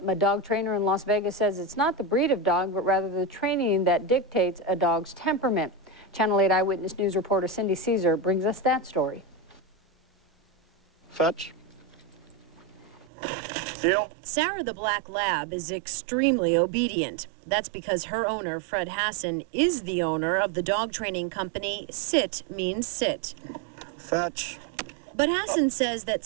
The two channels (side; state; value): left; drops out; at 13.1 s